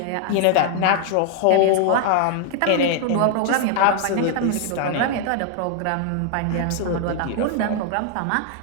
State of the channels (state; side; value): different; both; correlation 0.00